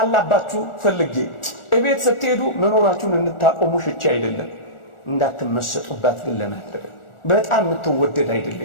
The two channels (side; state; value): right; late; 1.4 ms